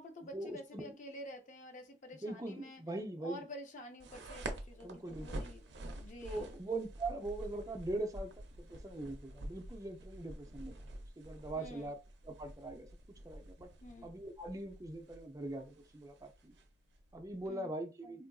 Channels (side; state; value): both; normal; correlation 0.69